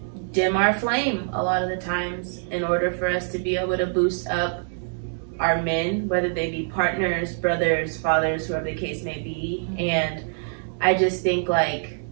dim our flame a lot of the times in order for us to be able to boost up our men, whether they be partners, brothers, fathers, whoever the case may be. And I just think, like,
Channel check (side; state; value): left; silent; digital silence